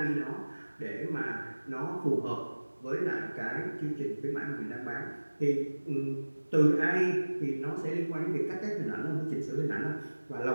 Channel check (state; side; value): inverted; both; correlation -1.00